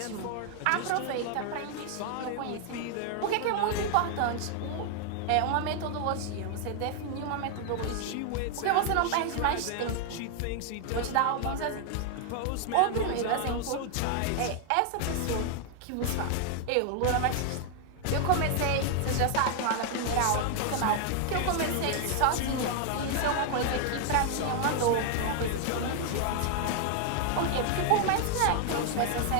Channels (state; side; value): different; both; correlation 0.00